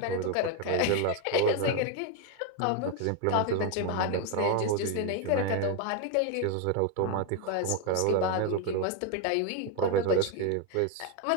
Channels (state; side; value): different; both; correlation 0.01